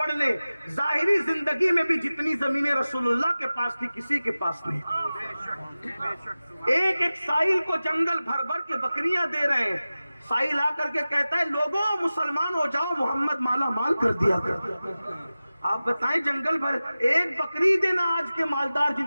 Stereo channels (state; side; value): inverted; both; correlation -0.96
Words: لے، ظاہری زندگی میں بھی جتنی زمینیں رسول اللہ کے پاس تھی کسی کے پاس نہیں۔ ایک ایک سائل کو جنگل بھر بھر کے بکریاں دے رہے ہیں۔ سائل آ کر کے کہتا ہے لوگوں مسلمان ہو جاؤ، محمد مالا مال کر دیا کر۔ آپ بتائیں جنگل بھر ایک بکری دینا، آج کے مالدار جن